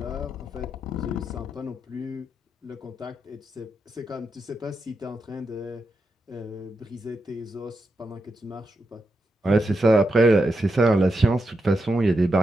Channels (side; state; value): both; normal; correlation 0.86